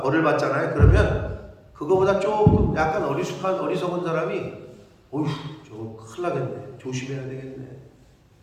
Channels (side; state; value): both; identical; correlation 1.00